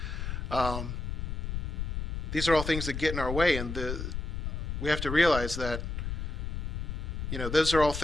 These are all things that get in our way, and we have to realize that those are all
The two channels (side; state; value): left; noise; rumble, 3 dB below the sound